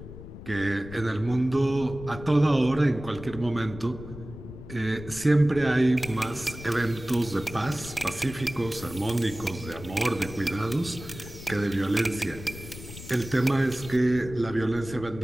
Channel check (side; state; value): left; noise; rumble, 13 dB below the sound